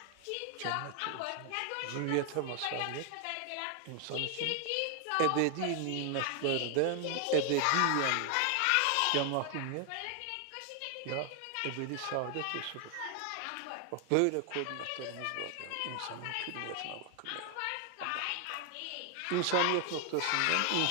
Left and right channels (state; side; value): different; both; correlation 0.00